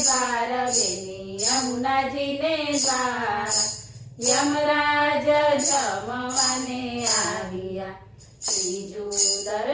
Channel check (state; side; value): identical; both; correlation 1.00